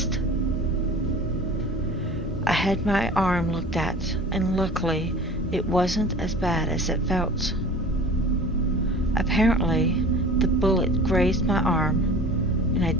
I had my arm looked at, and luckily it wasn't as bad as it felt. Apparently, the bullet grazed my arm, and I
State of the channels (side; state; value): both; normal; correlation 0.41